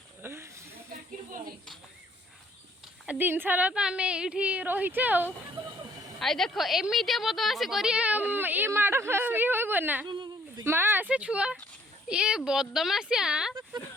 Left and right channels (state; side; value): normal; both; correlation 0.63